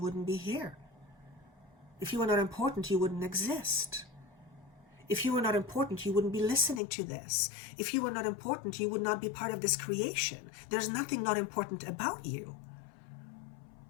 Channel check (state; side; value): drops out; right; at 6.8 s